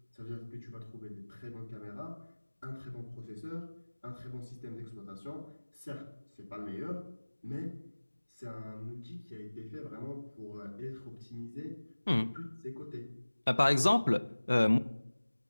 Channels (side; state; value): both; inverted; correlation -1.00